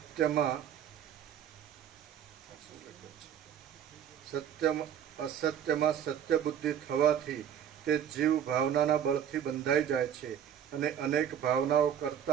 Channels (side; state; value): left; quieter; 9.2 dB